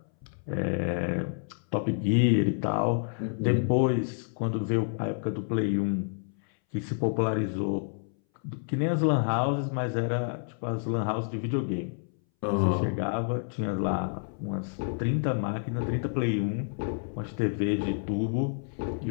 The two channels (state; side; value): silent; right; 59 dB below the other